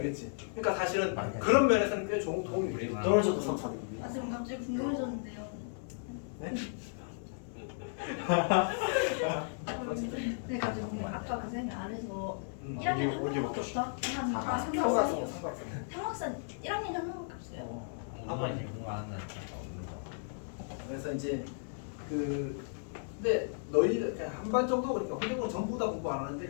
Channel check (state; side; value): silent; right; 55 dB below the other